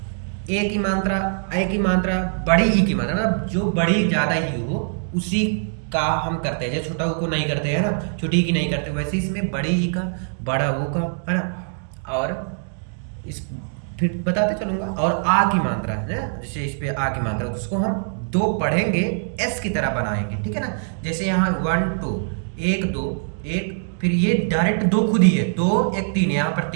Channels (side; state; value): left; silent; digital silence